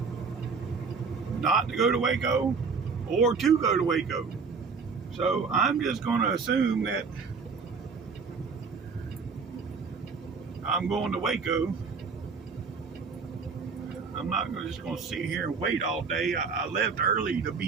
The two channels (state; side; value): quieter; left; 5.1 dB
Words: not to go to Waco or to go to Waco. So I'm just going to assume that I'm going to Waco. I'm not just going to sit here and wait all day. I left early to